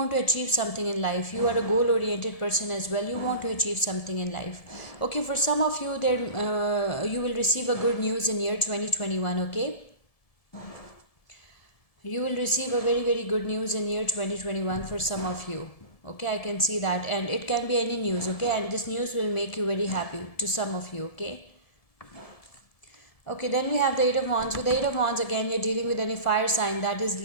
to achieve something in life. You are a goal oriented person as well. You want to achieve something in life. Okay, for some of you there, you will receive a good news in year 2021. Okay, you will receive a very good news in year 2021 for some of you. Okay, I can see that, and it can be any news. Okay, and this news will make you very happy to some of you. Okay. Okay, then we have the Eight of Wands. With the Eight of Wands, again, you're dealing with any fire sign, that is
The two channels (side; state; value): right; late; 1.7 ms